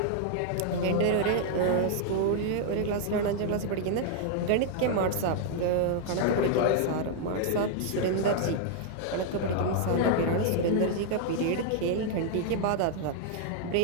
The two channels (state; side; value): different; both; correlation 0.00